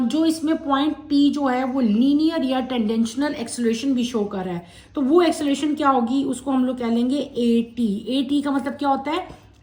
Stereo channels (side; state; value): both; identical; correlation 1.00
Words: इसमें पॉइंट P जो है वो लीनियर या टेंडेंशनल एक्सेलरेशन भी शो कर रहा है। तो वो एक्सेलरेशन क्या होगी, उसको हम लोग कह लेंगे AT का मतलब क्या होता है,